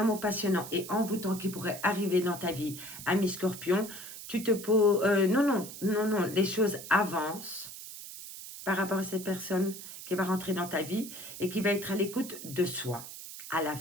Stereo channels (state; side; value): noise; right; hiss, 12 dB below the sound